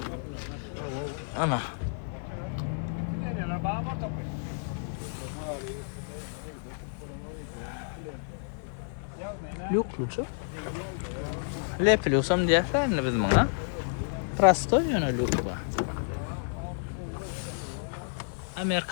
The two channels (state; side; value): silent; right; 57 dB below the other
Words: Ana. Yok mu çok? Lepiliyorsam diýerler biz muňa. Prosto ýönelik ba.